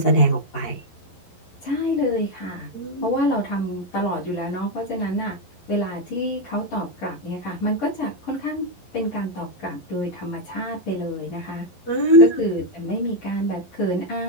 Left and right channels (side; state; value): right; late; 11 ms